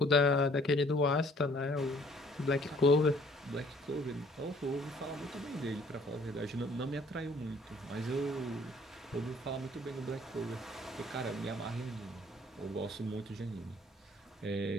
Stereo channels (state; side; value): normal; both; correlation 0.58